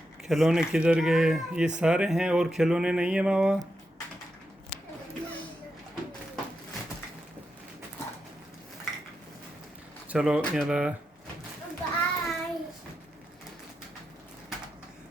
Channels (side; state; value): both; normal; correlation 0.86